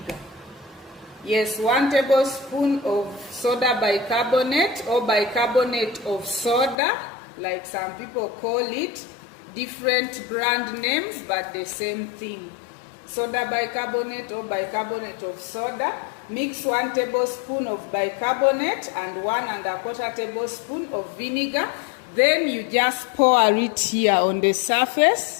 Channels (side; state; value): right; drops out; at 6.8 s